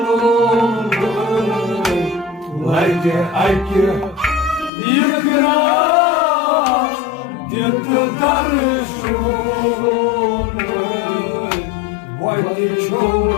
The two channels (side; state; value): right; drops out; at 4.7 s